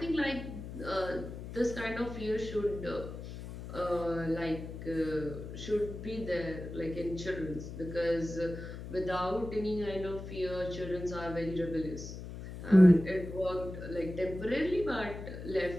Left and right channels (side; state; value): left; noise; hum, 10 dB below the sound